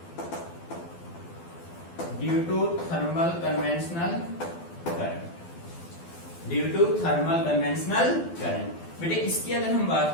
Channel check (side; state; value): right; late; 12 ms